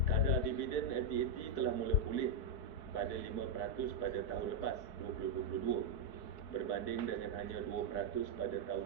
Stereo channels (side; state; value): right; late; 4.6 ms